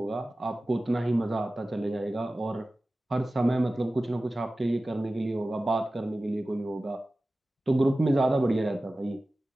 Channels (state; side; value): normal; both; correlation 0.96